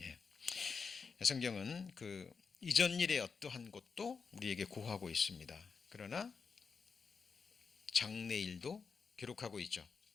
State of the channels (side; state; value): right; quieter; 5.4 dB